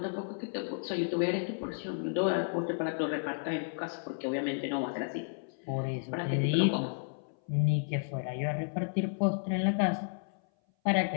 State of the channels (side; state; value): right; silent; 56 dB below the other